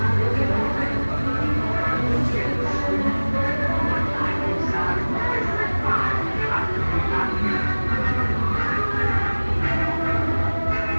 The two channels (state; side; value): inverted; both; correlation -1.00